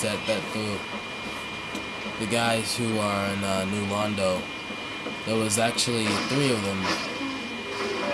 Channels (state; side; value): identical; both; correlation 1.00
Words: that the guys who are in New Londo. There was actually 3 of them,